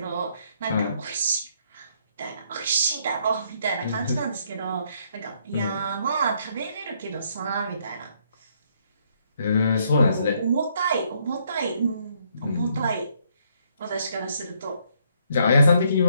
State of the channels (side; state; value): both; inverted; correlation -0.70